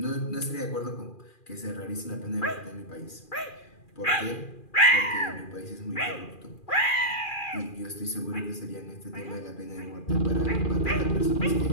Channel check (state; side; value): late; right; 2.4 ms